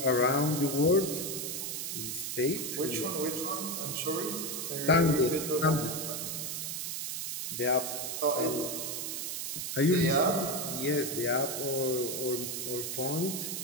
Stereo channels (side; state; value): right; noise; hiss, 4 dB below the sound